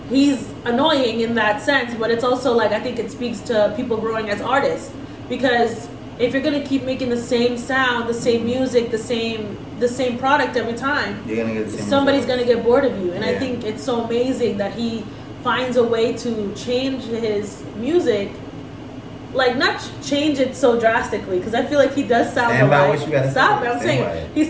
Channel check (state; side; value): identical; both; correlation 1.00